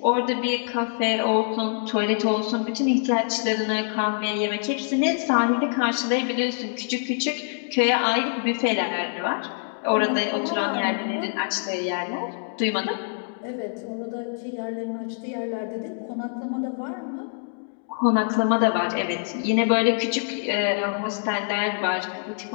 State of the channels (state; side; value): silent; right; digital silence